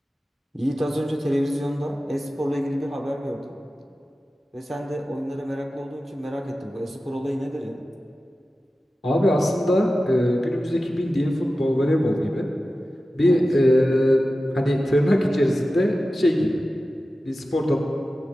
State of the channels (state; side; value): normal; both; correlation 0.94